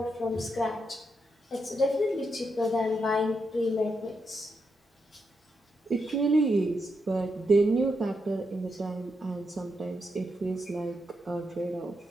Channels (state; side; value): normal; both; correlation 0.83